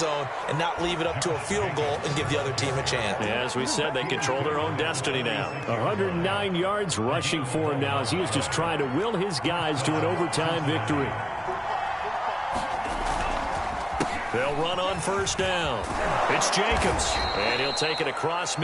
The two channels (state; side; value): identical; both; correlation 1.00